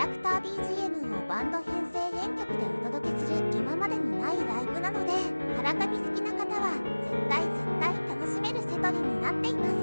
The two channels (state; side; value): inverted; both; correlation -1.00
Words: クター BGM をバンド編成編曲でお届けする今までにないライブなので、カラカミ好きな方は絶対楽しめるセトリになっていま